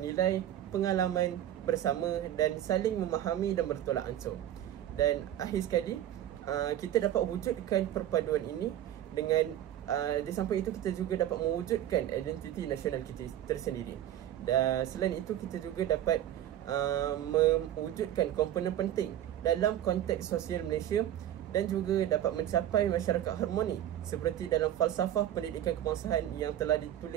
nilai, pengalaman bersama dan saling memahami dan bertolak ansur. Dan akhir sekali, kita dapat wujudkan perpaduan ini dengan di samping itu kita juga dapat mewujudkan identiti nasional kita tersendiri. Dan selain itu, kita juga dapat mewujudkan komponen penting dalam konteks sosial Malaysia dan juga dapat mencapai masyarakat harmoni seperti dalam falsafah pendidikan kebangsaan yang telah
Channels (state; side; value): quieter; left; 11.7 dB